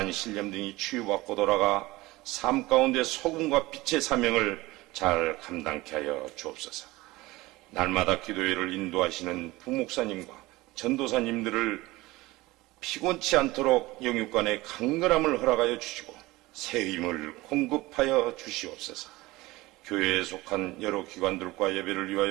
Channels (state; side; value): quieter; left; 20.0 dB